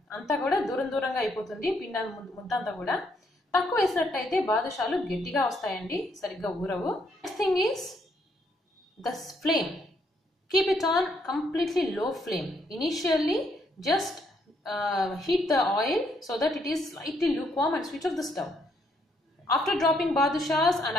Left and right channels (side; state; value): both; normal; correlation 0.72